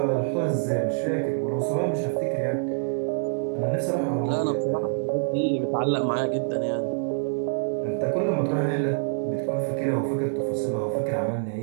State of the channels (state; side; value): silent; left; digital silence